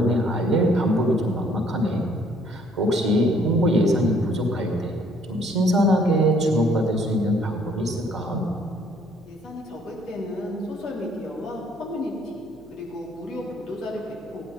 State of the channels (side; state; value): left; noise; hum, 26 dB below the sound